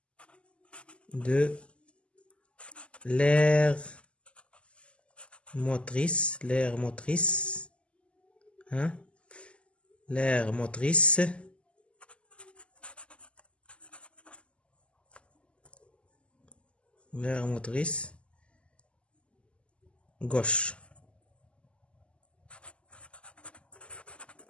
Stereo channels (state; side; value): late; right; 0.055 ms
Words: de l'aire motrice, gauche.